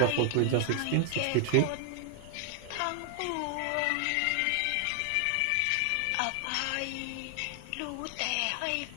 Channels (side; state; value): both; different; correlation 0.00